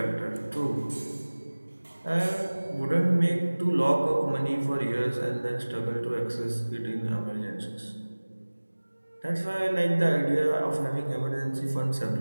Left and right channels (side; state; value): both; inverted; correlation -1.00